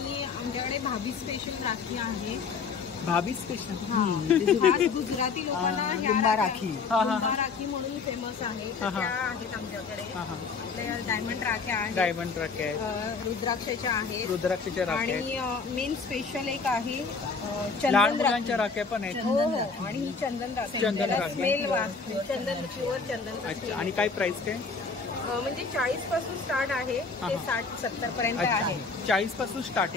आमच्याकडे भाभी स्पेशल राखी आहे. भाभी स्पेशल? गुजराती लोकांना लिंबा राखी. लिंबा राखी म्हणून फेमस आहे. त्या आहेत आमच्याकडे. आपल्या डायमंड राख्या आहेत. डायमंड राख्या आहेत. रुद्राक्षाच्या आहेत. रुद्राक्षाच्या राख्या आहेत. आणि मेन स्पेशल एक आहे लहान चंदन मुलांच्या राख्या पण आहेत. हो हो. आणि ही चंदन राखी. चंदन राखी. स्मेल चंदन, प्युअर चंदन. अच्छा. आणि काय प्राइस काय? म्हणजे 40 पासून स्टार्ट आहे ते 60-70 पर्यंत आहे. 40 पासून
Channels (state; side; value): quieter; right; 4.8 dB